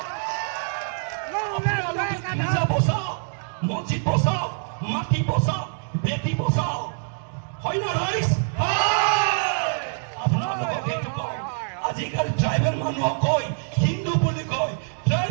নিজা বচাও মসজিদ বচাও মাটি বচাও বেটি বচাও হয় না রাইস আপোনালোকে এইটো কয় আজিকালি ট্ৰাইবেল মানুহক কয় হিন্দু বুলি কয়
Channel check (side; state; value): left; silent; 62 dB below the other